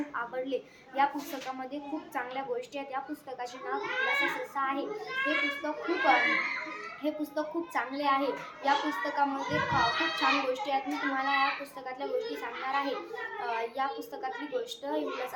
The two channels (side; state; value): both; identical; correlation 1.00